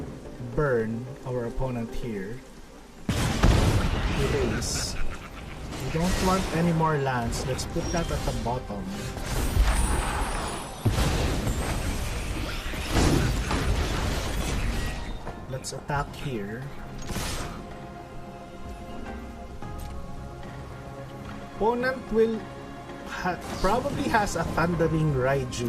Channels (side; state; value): both; identical; correlation 1.00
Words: burn our opponent here. Raise. We don't want any more lands. Let's put that at the bottom. Let's attack here. Opponent will probably has a Thundering